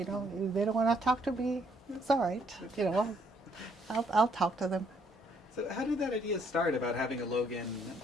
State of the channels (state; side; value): normal; both; correlation 0.68